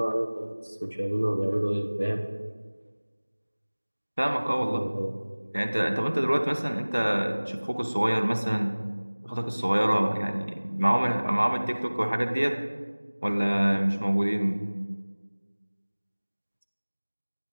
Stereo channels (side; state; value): both; inverted; correlation -1.00